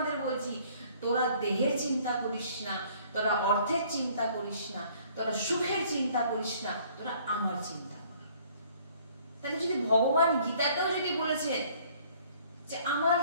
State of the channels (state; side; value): inverted; both; correlation -0.57